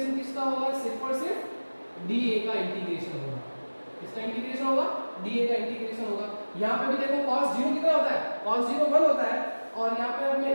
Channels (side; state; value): both; inverted; correlation -1.00